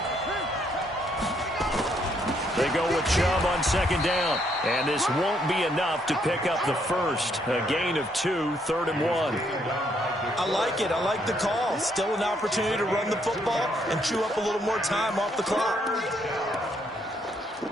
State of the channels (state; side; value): normal; both; correlation 0.72